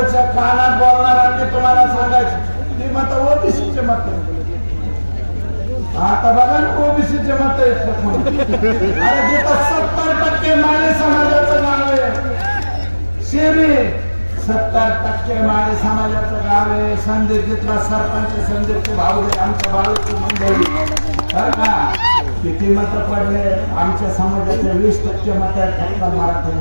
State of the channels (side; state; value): both; inverted; correlation -1.00